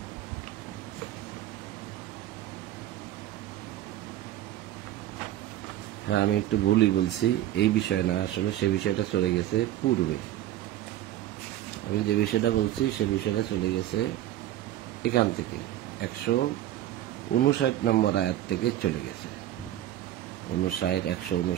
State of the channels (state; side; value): quieter; left; 13.1 dB